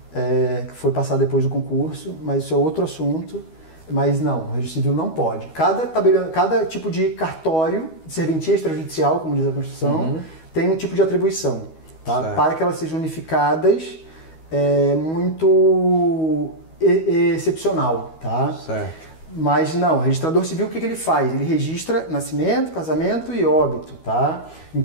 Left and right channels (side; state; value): right; late; 12 ms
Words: que foi passada depois do concurso, mas isso é outro assunto. Mas não, o registro civil não pode. Cada tipo de cartório, de serventia extrajudicial, como diz a Constituição, tem um tipo de atribuição, tá? Para que elas sejam unificadas, muito excepcional, tá? Certo. Mas não, o registrador civil o que ele faz? Ele registra nascimento, casamento e óbito, tá?